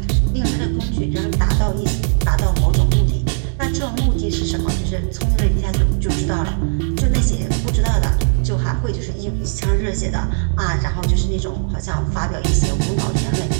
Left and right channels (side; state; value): left; silent; digital silence